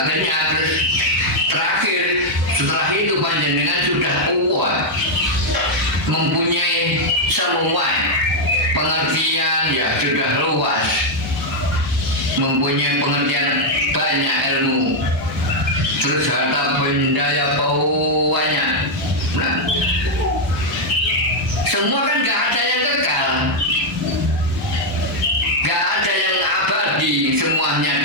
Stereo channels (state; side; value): normal; both; correlation -0.01